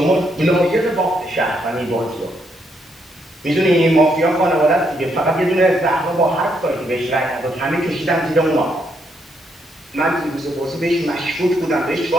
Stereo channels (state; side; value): normal; both; correlation 0.75